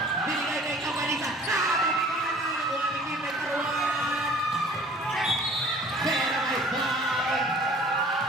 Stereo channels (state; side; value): normal; both; correlation 0.50